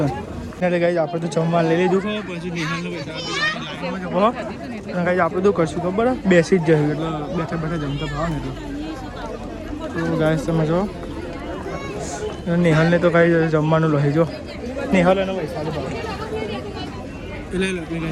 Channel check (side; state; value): both; identical; correlation 1.00